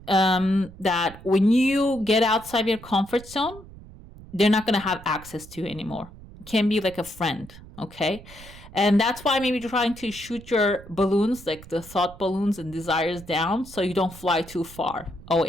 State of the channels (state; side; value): noise; right; rumble, 18 dB below the sound